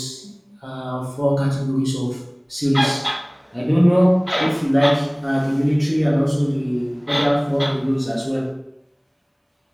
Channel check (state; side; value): identical; both; correlation 1.00